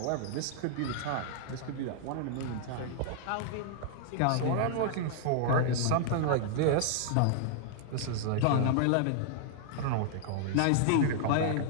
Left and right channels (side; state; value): both; different; correlation -0.01